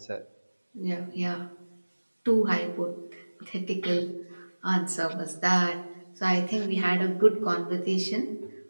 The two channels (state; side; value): inverted; both; correlation -1.00